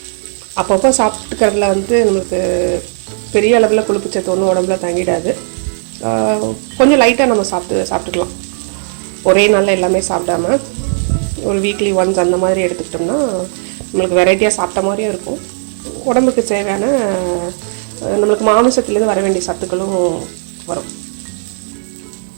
அப்பப்போ சாப்பிட்டுக்கிறதுல வந்து நம்மளுக்கு பெரிய அளவில் கொழுப்பு சத்து ஒன்றும் உடம்புல தங்கிடாது. கொஞ்சம் லைட்டாக நம்ம சாப்பிட்டுக்கலாம். ஒரே நாளில் எல்லாமே சாப்பிடாம ஒரு வீக்லி ஒன்ஸ் அந்த மாதிரி எடுத்துக்கிட்டோம்னா நம்மளுக்கு வெரைட்டியாக சாப்பிட்ட மாதிரியும் இருக்கும். உடம்புக்கு தேவையான நம்மளுக்கு மாமிசத்துலேருந்து வர வேண்டிய சத்துக்களும் வரும்.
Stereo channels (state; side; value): silent; left; digital silence